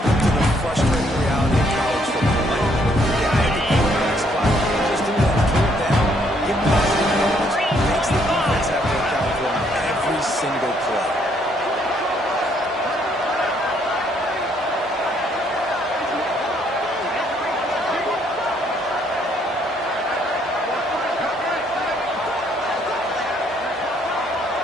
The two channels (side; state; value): both; normal; correlation 0.68